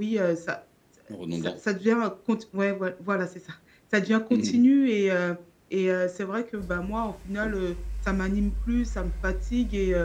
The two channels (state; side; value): identical; both; correlation 1.00